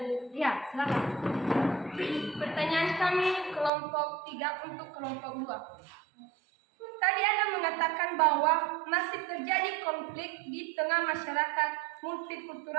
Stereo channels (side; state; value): left; drops out; at 3.7 s